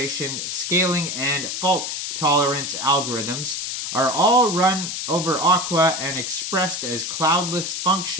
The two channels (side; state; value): left; noise; hiss, 4 dB below the sound